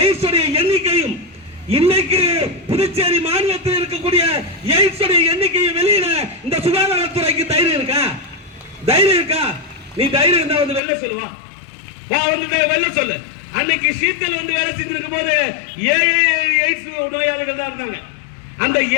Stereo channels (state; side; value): drops out; right; at 10.8 s